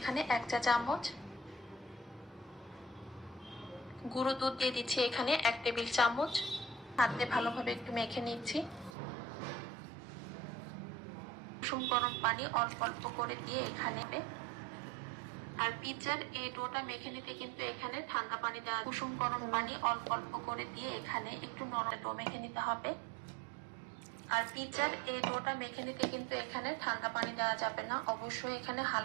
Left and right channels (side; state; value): left; drops out; at 8.9 s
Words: 1 চা চামচ, গুঁড়ো দুধ দিয়ে দিচ্ছি এখানে 1 টেবিল চামচ। হাতে ভালোভাবে একটু মেখে নিচ্ছি। কুসুম গরম পানি অল্প অল্প করে দিয়ে এখানে, আর পিৎজার এই ডোটা মেখে নিতে কিন্তু এখানে ঠান্ডা পানি দেওয়া, কুসুম গরম পানি অল্প অল্প করে দিয়ে এখানে একটু নরম ডো মেখে নিতে হবে। আর পিৎজার এই ডোটা মেখে নিতে কিন্তু এখানে ঠান্ডা পানি দেওয়া যাবে না, অবশ্যই এখানে